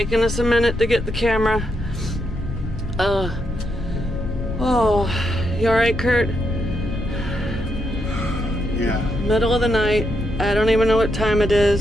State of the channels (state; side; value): normal; both; correlation 0.80